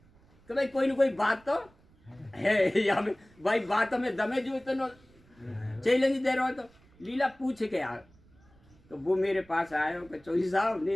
कि भाई कोई ना कोई बात तो है या में भाई बात में दमे जो इतना चैलेंज दे रहा हो तो लीला पूछ के यार। तो वो मेरे पास आए हो कि चौधरी साहब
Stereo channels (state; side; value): noise; right; rumble, 29 dB below the sound